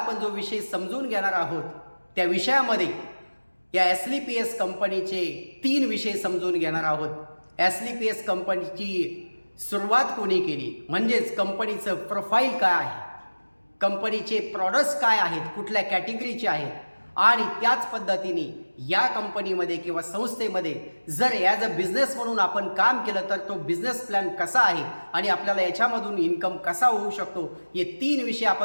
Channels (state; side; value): inverted; both; correlation -1.00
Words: जो विषय समजून घेणार आहोत त्या विषयामध्ये या एसलीपीएस कंपनीचे 3 विषय समजून घेणार आहोत। एसलीपीएस कंपनीची सुरुवात कोणी केली, म्हणजेच कंपनीचं प्रोफाईल काय आहे, कंपनीचे प्रॉडक्ट्स काय आहेत, कुठल्या कॅटेगरीचे आहेत, आणि त्याच पद्धतीने या कंपनीमध्ये किंवा संस्थेमध्ये जर ॲज अ बिझनेस म्हणून आपण काम केलं तर तो बिझनेस प्लॅन कसा आहे आणि आपल्याला याच्यामधून इन्कम कसा होऊ शकतो, हे 3 विषय